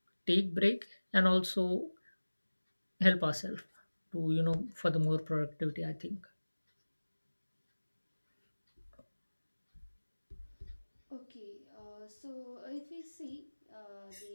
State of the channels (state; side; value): inverted; both; correlation -1.00